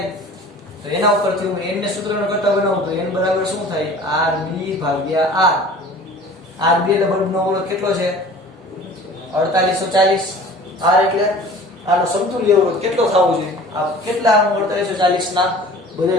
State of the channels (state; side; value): normal; both; correlation 0.44